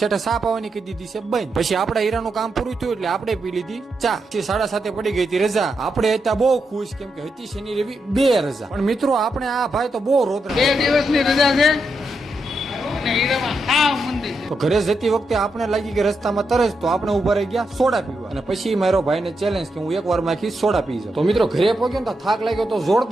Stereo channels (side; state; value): both; normal; correlation 0.84